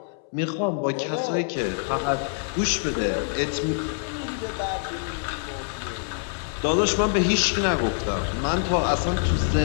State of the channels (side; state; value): right; silent; 61 dB below the other